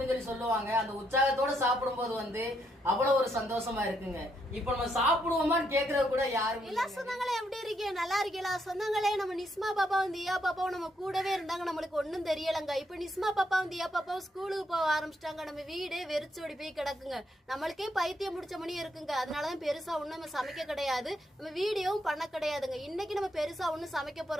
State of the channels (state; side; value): normal; both; correlation 0.76